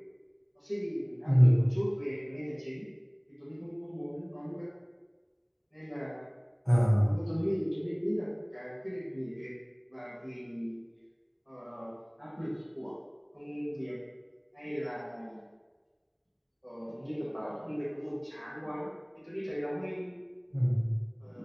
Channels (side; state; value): both; identical; correlation 1.00